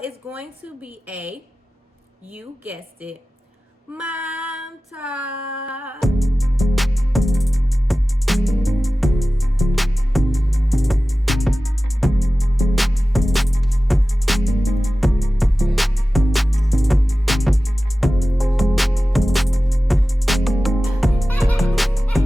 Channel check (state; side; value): normal; both; correlation 0.96